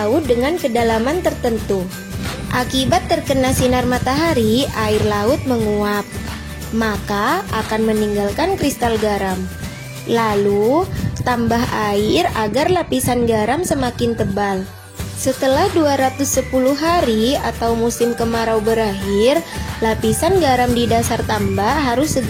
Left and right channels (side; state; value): both; identical; correlation 1.00